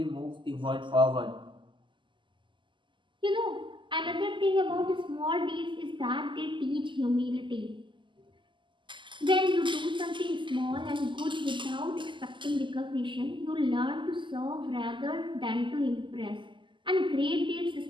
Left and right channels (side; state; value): left; late; 0.24 ms